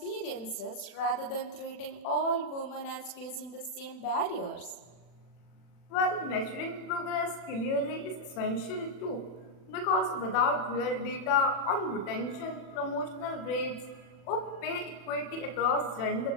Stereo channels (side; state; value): right; late; 40 ms